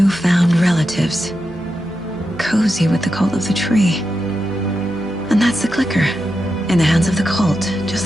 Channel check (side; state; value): right; noise; hum, 21 dB below the sound